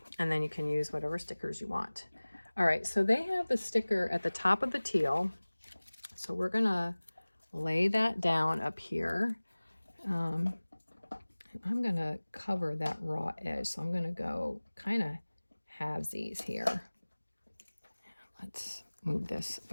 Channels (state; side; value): inverted; both; correlation -1.00